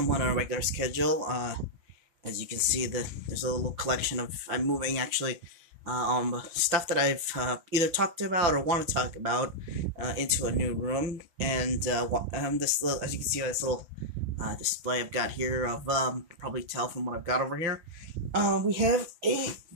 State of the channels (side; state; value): left; late; 5.9 ms